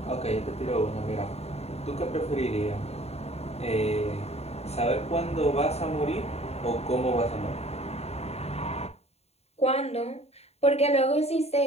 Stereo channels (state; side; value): late; right; 0.30 ms